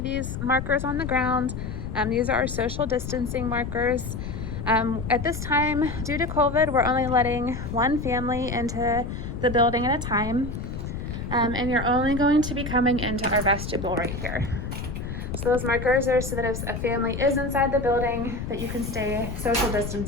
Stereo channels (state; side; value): noise; left; rumble, 6 dB below the sound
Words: these markers on the ground. These are our social distancing markers. At this time, due to COVID, we're only letting one family into the building at a time. And you're only going to be coming into our vestibule right here. So those markers are so that if a family is inside the building, that you can stay social